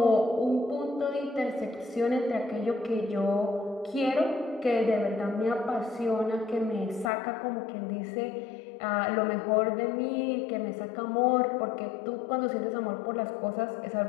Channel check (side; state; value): right; drops out; at 7.1 s